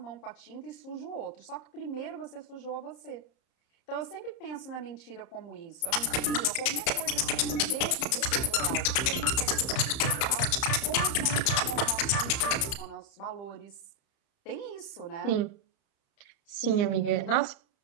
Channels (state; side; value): late; right; 31 ms